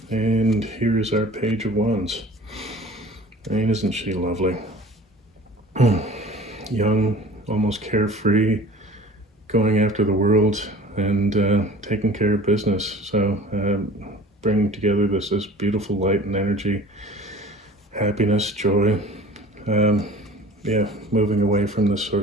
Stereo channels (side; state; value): both; normal; correlation 0.44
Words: And here is our Page of Wands. I mean, isn't she lovely? Young, almost carefree, going after the world and taking care of business. So bringing together this beautiful light and energy, happiness, joy. Moving away from this